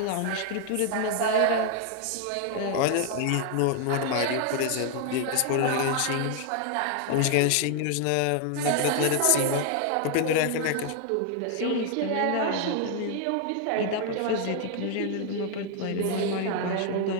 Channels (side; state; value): both; different; correlation 0.00